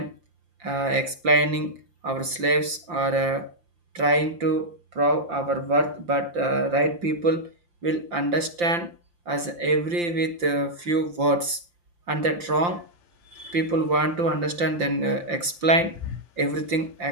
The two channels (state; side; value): late; left; 5.8 ms